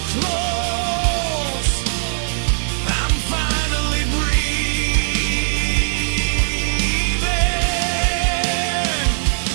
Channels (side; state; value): left; silent; digital silence